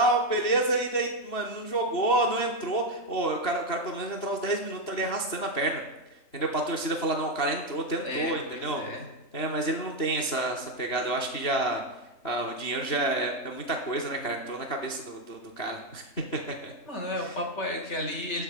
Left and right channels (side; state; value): right; late; 3.0 ms